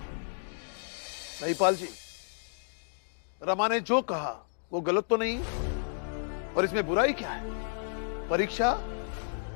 महिपाल जी, रमा ने जो कहा वो गलत तो नहीं, और इसमें बुराई क्या है? परीक्षा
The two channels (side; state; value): right; silent; digital silence